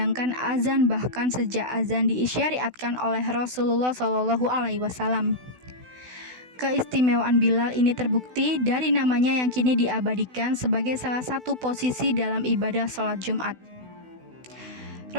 azan bahkan sejak azan diisyariatkan oleh Rasulullah SAW. Keistimewaan Bilal ini terbukti dari namanya yang kini diabadikan sebagai salah satu posisi dalam ibadah sholat Jumat.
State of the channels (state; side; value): late; left; 16 ms